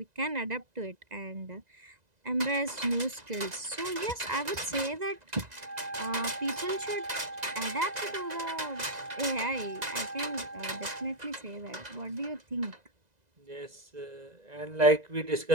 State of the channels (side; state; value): left; late; 2.0 ms